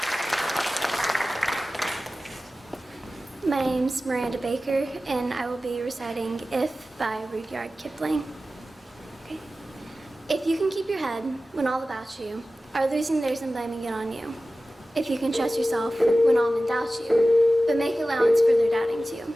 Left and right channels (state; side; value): normal; both; correlation 0.95